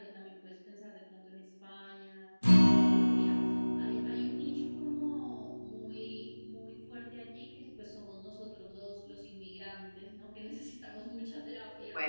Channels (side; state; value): both; inverted; correlation -1.00